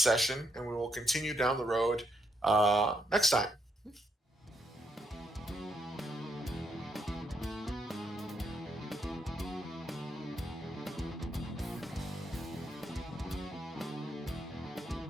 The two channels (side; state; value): both; normal; correlation 0.77